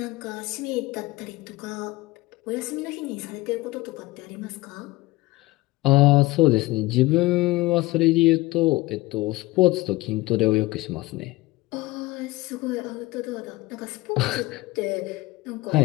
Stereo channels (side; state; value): right; quieter; 20.1 dB